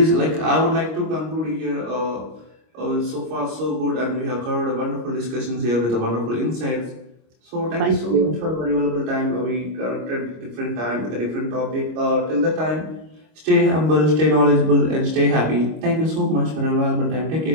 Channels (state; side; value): late; left; 25 ms